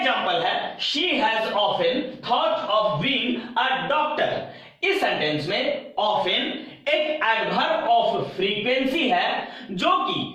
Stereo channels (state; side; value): identical; both; correlation 1.00